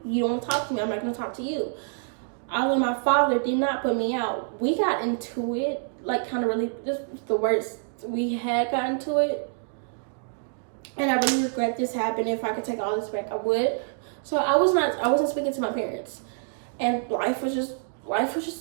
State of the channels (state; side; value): silent; left; digital silence